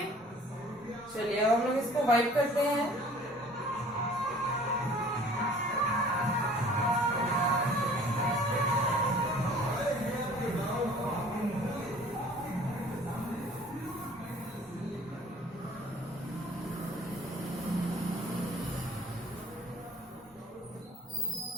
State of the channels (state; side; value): normal; both; correlation 0.51